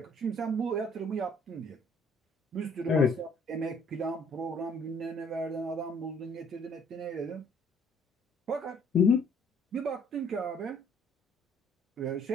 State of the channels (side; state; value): both; normal; correlation 0.60